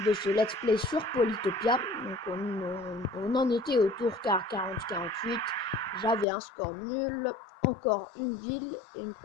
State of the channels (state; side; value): drops out; right; at 6.2 s